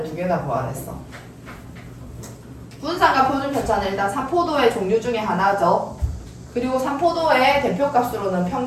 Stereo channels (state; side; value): identical; both; correlation 1.00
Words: 두 개 다 구하랬어. 분산과 표준 편차는 일단 삼포도의 종류 중에 하나죠. 그리고 삼포도의 대표값으로는